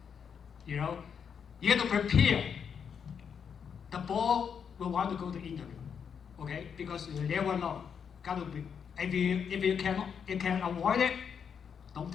You have to prepare. The ball will want to go to interview, okay? Because you never know. Gotta be. If you can avoid it, don't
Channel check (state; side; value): quieter; right; 7.1 dB